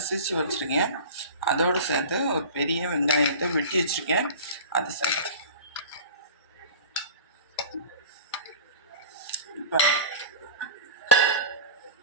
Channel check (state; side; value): inverted; both; correlation -0.35